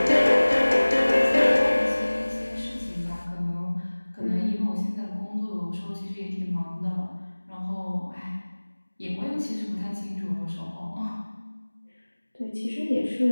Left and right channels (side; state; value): both; inverted; correlation -1.00